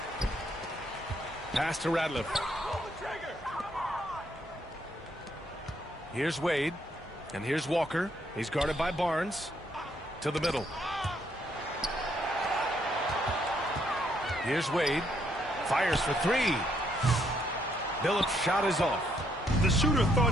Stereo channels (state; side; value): normal; both; correlation 0.72